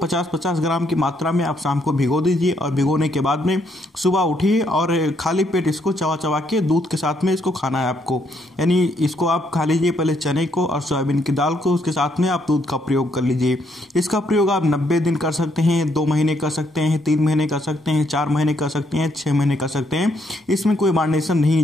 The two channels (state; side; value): normal; both; correlation 0.73